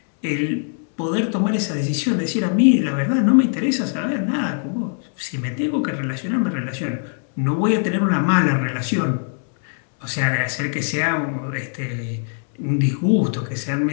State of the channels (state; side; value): silent; right; 64 dB below the other